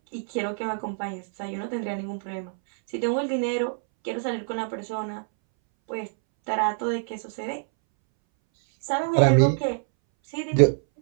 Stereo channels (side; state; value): left; silent; 61 dB below the other